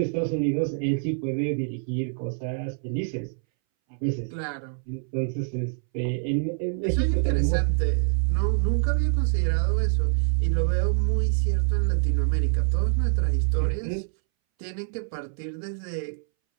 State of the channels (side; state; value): left; silent; 61 dB below the other